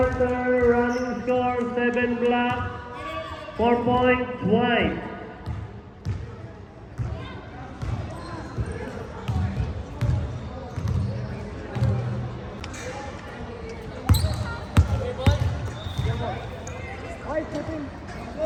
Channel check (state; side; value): identical; both; correlation 1.00